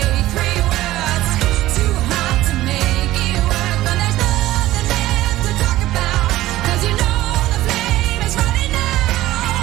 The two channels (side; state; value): left; quieter; 15.9 dB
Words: 3 words, too hot to make it work, but there's nothing left to talk about, 'cause you know the flame is running